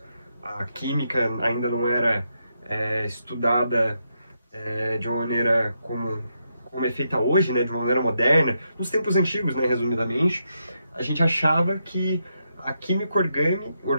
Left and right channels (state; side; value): inverted; both; correlation -0.82